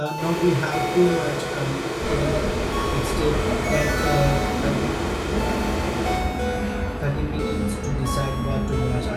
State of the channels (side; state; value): both; identical; correlation 1.00